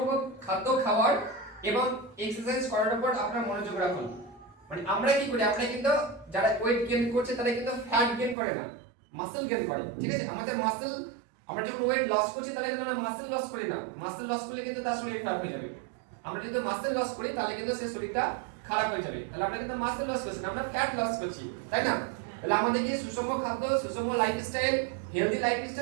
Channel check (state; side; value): drops out; left; at 8.3 s